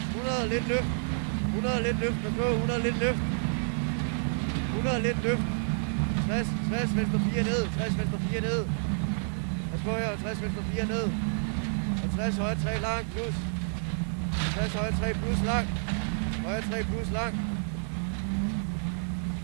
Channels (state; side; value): silent; left; 58 dB below the other